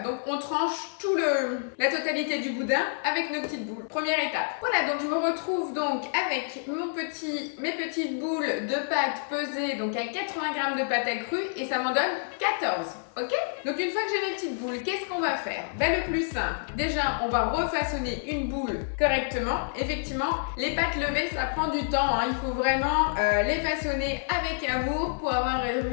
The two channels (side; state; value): right; silent; 57 dB below the other